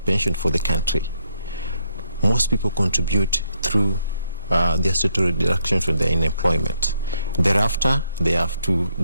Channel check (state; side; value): inverted; both; correlation -0.75